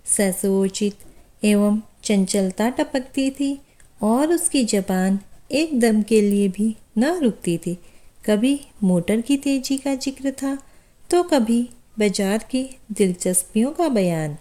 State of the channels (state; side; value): identical; both; correlation 1.00